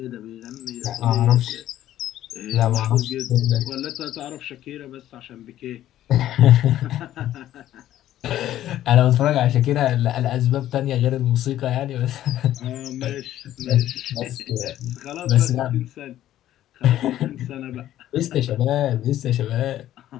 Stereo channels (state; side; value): quieter; right; 12.9 dB